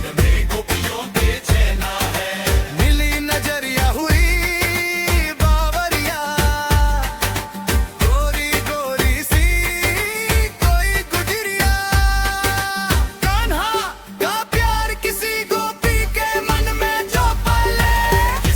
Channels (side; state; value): both; identical; correlation 1.00